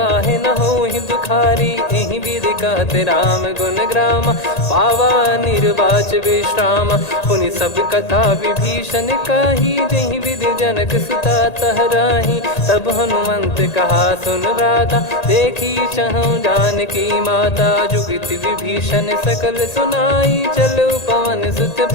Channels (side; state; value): right; late; 1.8 ms